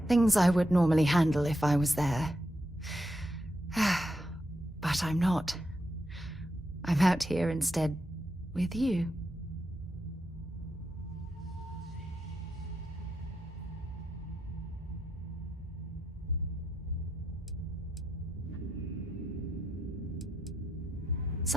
Things I would normally handle if I was there. But I'm not. I'm out here instead with you.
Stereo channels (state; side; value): normal; both; correlation 0.83